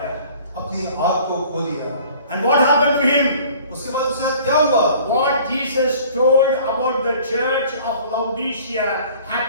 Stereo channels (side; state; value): both; inverted; correlation -0.50